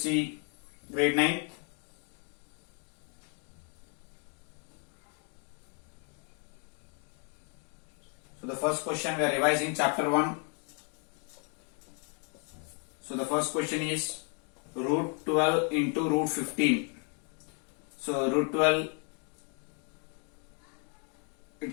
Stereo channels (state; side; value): quieter; right; 39.8 dB